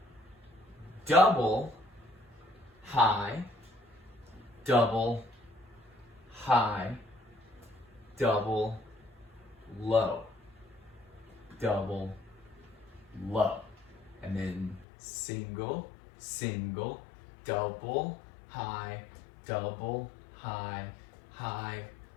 double, high, double, high, double, low, double, low. And then single, single, double, high, high,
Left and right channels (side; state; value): right; drops out; at 14.9 s